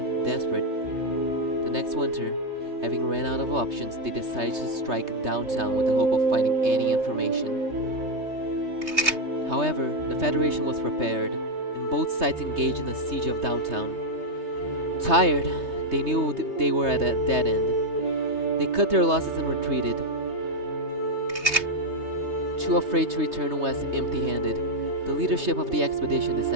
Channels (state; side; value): late; left; 3.2 ms